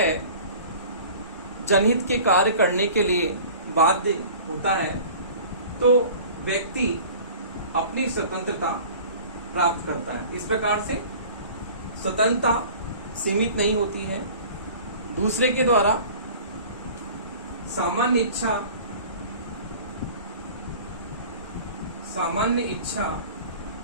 जनहित के कार्य करने के लिए बाध्य होता है, तो व्यक्ति अपनी स्वतंत्रता प्राप्त करता है। इस प्रकार से स्वतंत्रता सीमित नहीं होती है। दूसरे के द्वारा सामान्य इच्छा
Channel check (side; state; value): both; inverted; correlation -0.43